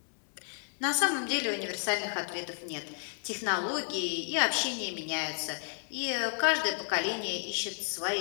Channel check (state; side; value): silent; right; digital silence